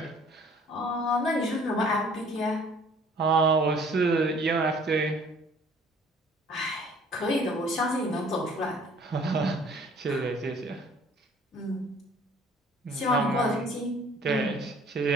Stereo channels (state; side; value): normal; both; correlation 0.54